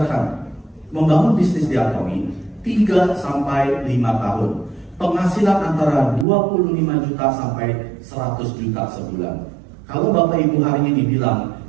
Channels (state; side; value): drops out; left; at 6.2 s